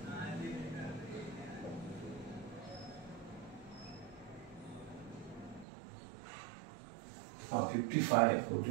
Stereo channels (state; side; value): drops out; left; at 5.7 s